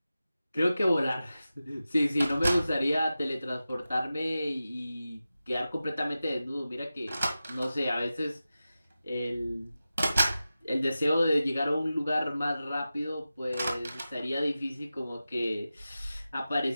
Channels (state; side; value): inverted; both; correlation -0.94